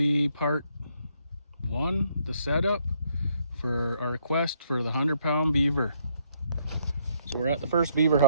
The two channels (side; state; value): both; inverted; correlation -0.70